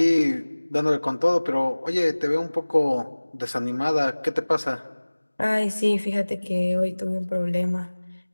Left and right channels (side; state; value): both; inverted; correlation -1.00